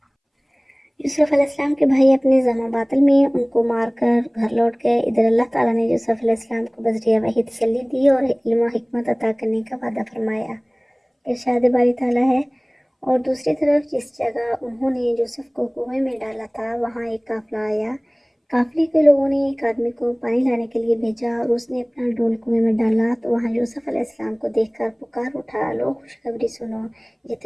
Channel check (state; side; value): identical; both; correlation 1.00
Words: یوسف علیہ السلام کے بھائی اپنے زم و باطل میں ان کو مار کر گھر لوٹ گئے۔ ادھر اللہ تعالیٰ نے یوسف علیہ السلام کو بذریعہ وحی تسلی دی اور علم و حکمت عطا کرنے کا وعدہ فرمایا، ارشاد باری تعالیٰ ہے۔ اور دوسری طرف جس جگہ انہوں نے یوسف کو کنویں میں ڈالا تھا وہاں ایک قافلہ آیا۔ قافلے کے لوگوں نے ایک آدمی کو پانی لانے کے لیے بھیجا اور اس نے اپنا ڈول کنویں میں ڈالا تو وہاں یوسف علیہ السلام کو دیکھ کر پکار اٹھا، لو خوشخبری سنو، یہ